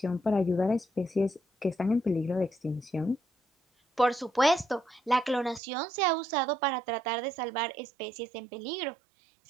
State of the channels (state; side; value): drops out; left; at 5.6 s